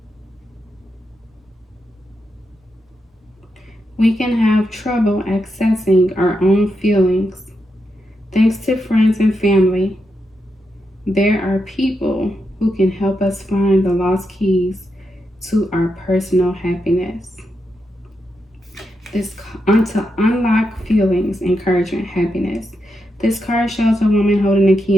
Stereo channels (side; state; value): both; normal; correlation 0.85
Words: We can have trouble accessing our own feelings. Thanks to friends and family, there are people who can help us find the lost keys to our personal happiness. To unlock feelings, encouragement, happiness. This card shows a woman holding a